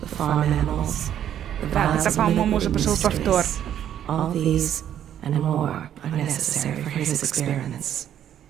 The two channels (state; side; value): quieter; left; 10.4 dB